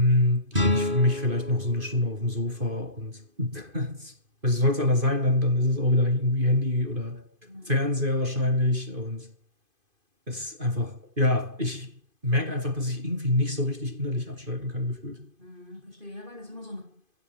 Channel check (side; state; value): left; late; 2.5 ms